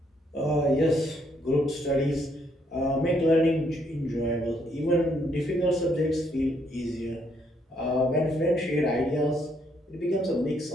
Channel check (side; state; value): both; normal; correlation 0.72